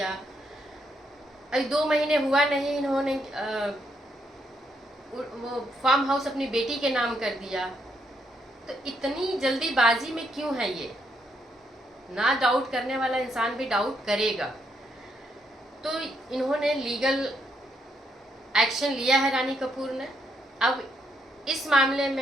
अभी 2 महीने हुआ नहीं, इन्होंने वो फार्म हाउस अपनी बेटी के नाम कर दिया। तो इतनी जल्दीबाजी में क्यों है ये? ना डाउट करने वाला इंसान भी डाउट करेगा। तो इन्होंने लीगल एक्शन लिया है रानी कपूर ने। अब इस मामले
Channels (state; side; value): normal; both; correlation 0.76